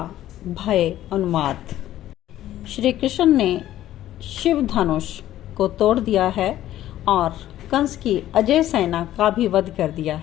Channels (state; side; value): quieter; right; 13.3 dB